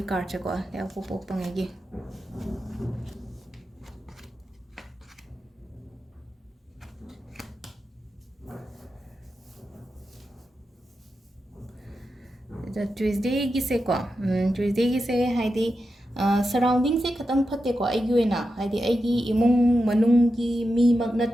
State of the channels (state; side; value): normal; both; correlation 0.89